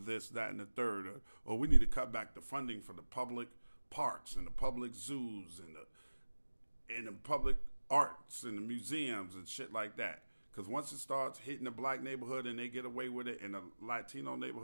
that, and the third, or we need to cut back the funding for the public parks and the public zoos and the public arts and the museums and shit like that. Because once it starts hitting the black neighborhood and they get away with it in the Latino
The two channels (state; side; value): inverted; both; correlation -1.00